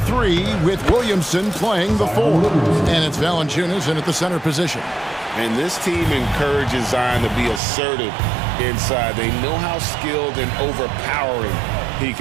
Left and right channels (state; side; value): drops out; left; at 7.6 s